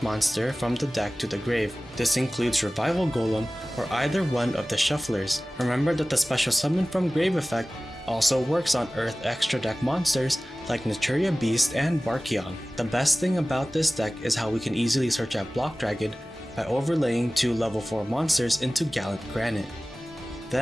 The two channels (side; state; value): both; normal; correlation 0.97